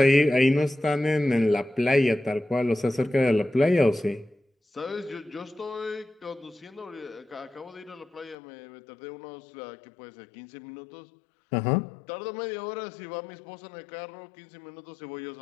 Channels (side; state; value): right; drops out; at 8.3 s